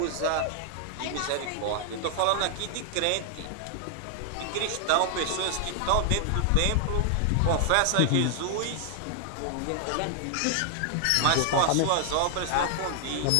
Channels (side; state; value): both; different; correlation 0.00